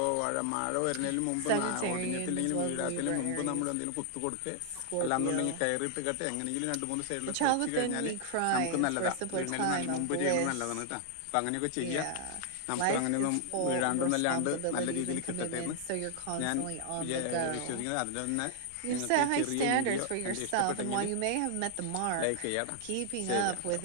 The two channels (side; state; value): both; different; correlation -0.01